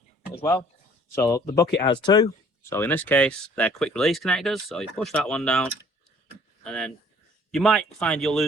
as well. So the bucket has two. So in this case, they're quick release connectors. So you push that one down, and then you might find you'll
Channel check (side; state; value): both; normal; correlation 0.56